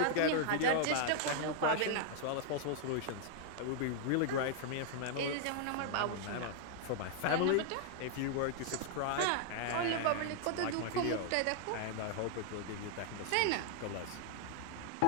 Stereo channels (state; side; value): different; both; correlation 0.00